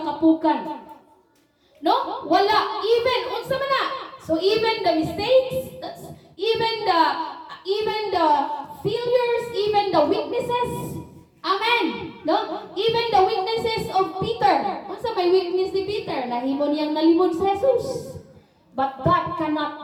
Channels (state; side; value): identical; both; correlation 1.00